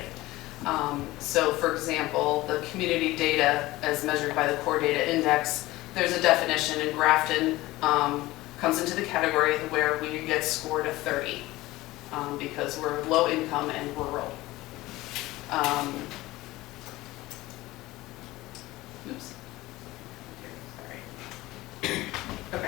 So for example, the community data as measured by the core data index, there's a definition in Grafton, comes into the category where we get scored a 30 because we're low income and rural.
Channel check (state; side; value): quieter; right; 18.5 dB